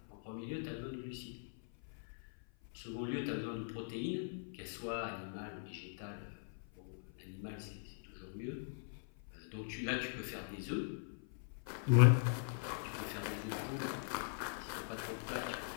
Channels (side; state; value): right; silent; 50 dB below the other